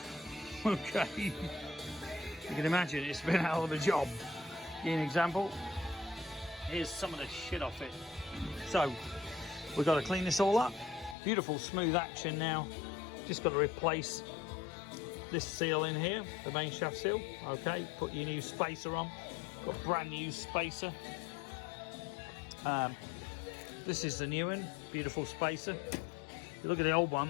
Okay. You can imagine it's been a hell of a job. Give you an example. Here's some of the shit off it. So we've got to clean this all up. Beautiful smooth action now. Just got to replace this seal in here, the main shaft seal. Okay, put your new spacer on. Got brand new spacer. This is the new one. Beautiful spacer. If you look at the old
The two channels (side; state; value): right; drops out; at 11.2 s